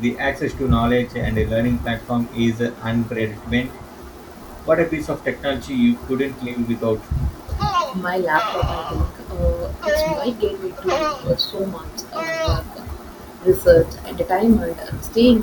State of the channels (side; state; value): both; identical; correlation 1.00